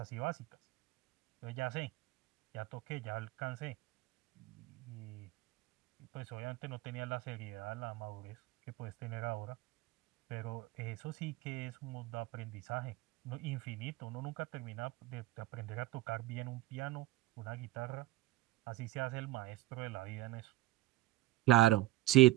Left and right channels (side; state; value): left; quieter; 17.2 dB